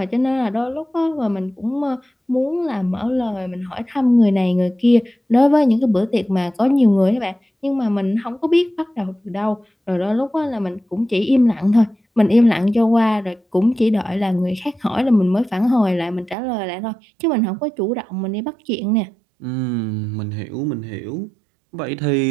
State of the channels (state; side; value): drops out; left; at 16.4 s